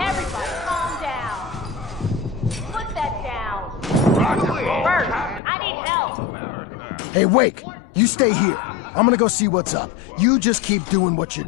calm down. Put that down. Bert, I need help. Hey, Wake, you stay here. I'm gonna go see what's up. You just keep doing what you're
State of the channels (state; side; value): drops out; right; at 5.4 s